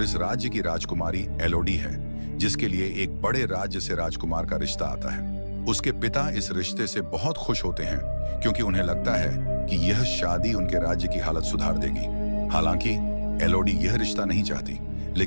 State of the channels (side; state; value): both; inverted; correlation -1.00